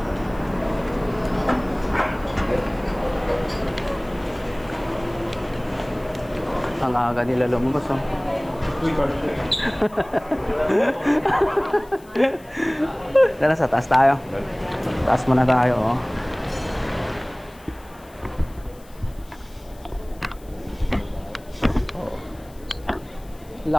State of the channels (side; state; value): left; noise; hiss, 26 dB below the sound